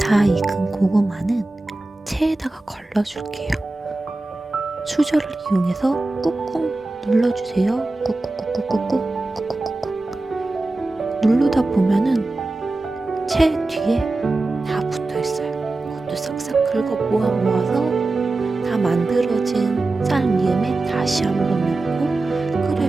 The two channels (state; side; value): quieter; left; 3.1 dB